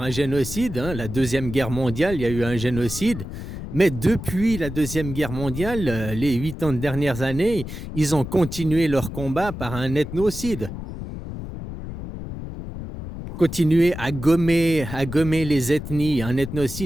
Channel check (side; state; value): left; noise; rumble, 9 dB below the sound